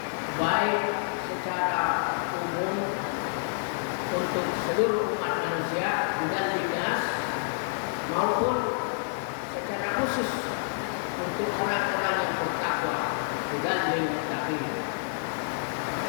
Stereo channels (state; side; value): silent; right; 59 dB below the other